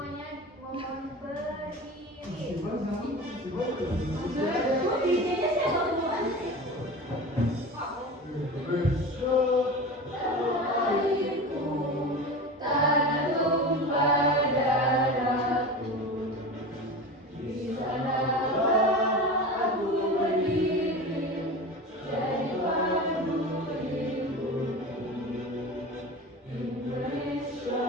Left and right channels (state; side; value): normal; both; correlation 0.31